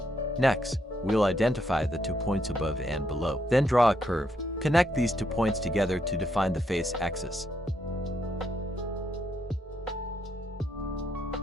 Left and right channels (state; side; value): normal; both; correlation 0.76